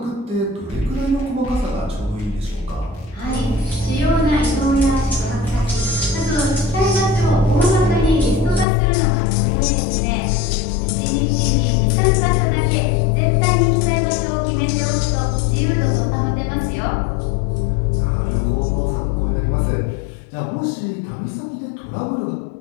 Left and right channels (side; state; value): right; drops out; at 8.7 s